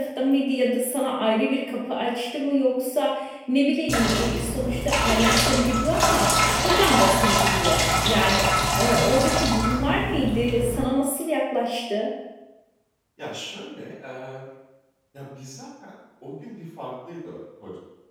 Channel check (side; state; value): both; identical; correlation 1.00